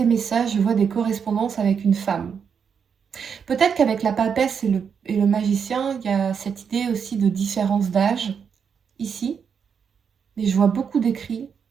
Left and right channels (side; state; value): left; quieter; 6.8 dB